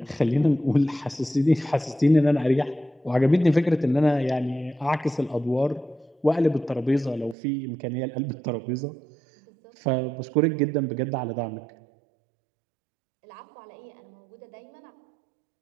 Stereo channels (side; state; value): left; drops out; at 7.4 s